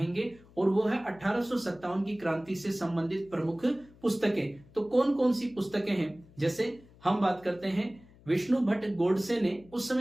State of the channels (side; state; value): left; noise; hum, 25 dB below the sound